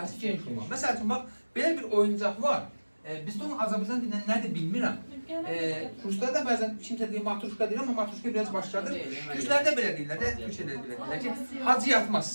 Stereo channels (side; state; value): both; inverted; correlation -1.00